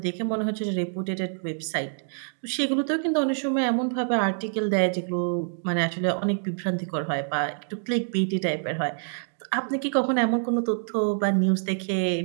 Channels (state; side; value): silent; left; digital silence